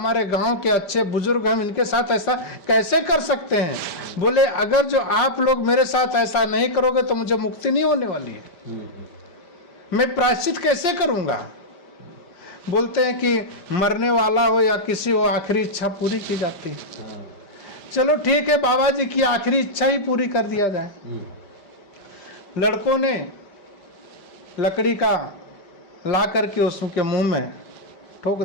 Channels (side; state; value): right; late; 5.1 ms